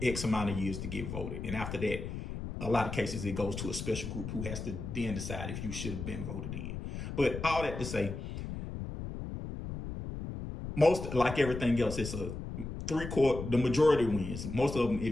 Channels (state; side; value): noise; left; rumble, 7 dB below the sound